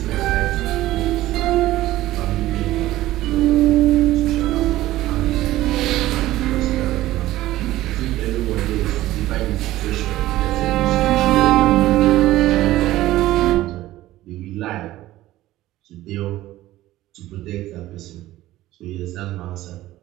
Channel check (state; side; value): quieter; left; 15.8 dB